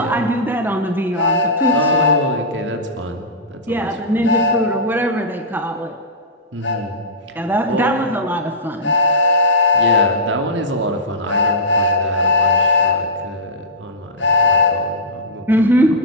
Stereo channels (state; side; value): normal; both; correlation -0.12